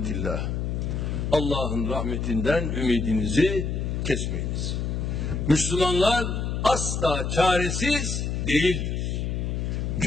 Allah'ın rahmetinden ümidinizi kesmeyiniz. Müslümanlar asla çaresiz değildir.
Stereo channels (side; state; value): left; noise; hum, 1 dB below the sound